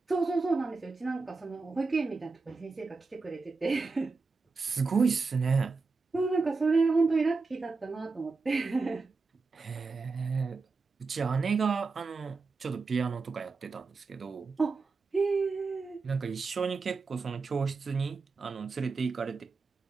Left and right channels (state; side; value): quieter; left; 4.2 dB